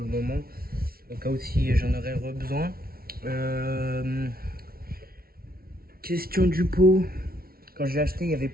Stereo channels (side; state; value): left; late; 0.44 ms